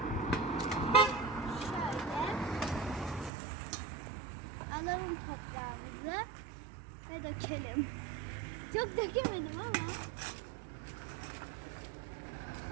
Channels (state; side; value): drops out; left; at 3.3 s